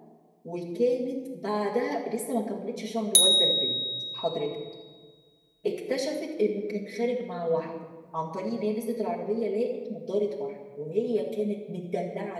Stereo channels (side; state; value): both; identical; correlation 1.00